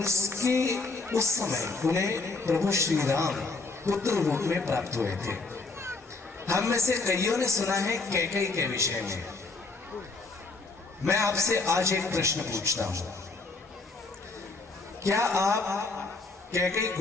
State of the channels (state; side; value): quieter; right; 3.7 dB